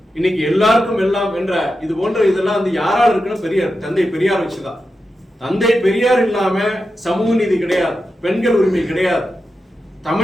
இன்னைக்கு எல்லாருக்கும் எல்லாம் என்ற இது போன்ற இதெல்லாம் யாரால் இருக்குன்னு பெரியார், தந்தை பெரியார் வச்சுதான். தந்தை பெரியார் இல்லாம சமூக நீதி கிடையாது, பெண்கள் உரிமை கிடையாது.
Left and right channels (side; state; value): both; normal; correlation 0.89